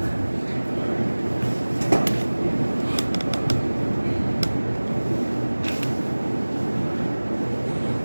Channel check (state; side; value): inverted; both; correlation -1.00